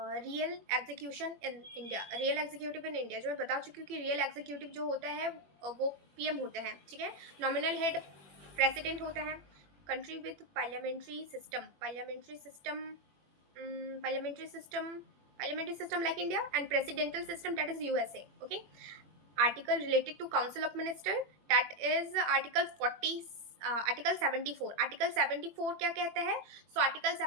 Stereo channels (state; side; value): late; left; 21 ms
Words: execution in India. Real executive in India, जो मैं बता चुकी हूँ कि रियल एग्जीक्यूटिव जो होता है वो पीएम होते हैं, ठीक है। नॉमिनल हेड प्रेसिडेंट होता है। Country with parliamentary system, parliamentary system like India, and presidential system, that is USA. Okay, article related to council of minister, that is article 40, article 74। article 74 क्या कहता है? So article